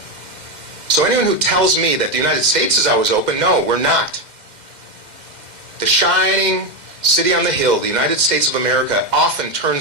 So anyone who tells me that the United States is always open, no, we're not. The shining city on the hill, the United States of America, often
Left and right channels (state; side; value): late; left; 2.1 ms